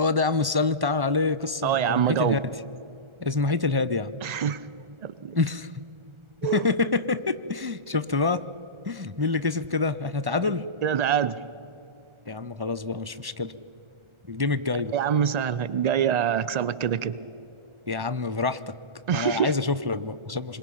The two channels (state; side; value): late; left; 1.1 ms